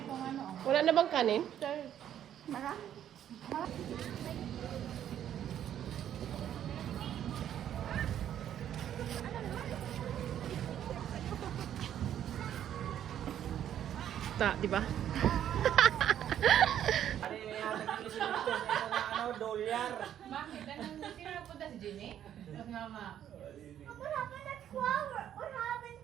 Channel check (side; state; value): left; quieter; 10.4 dB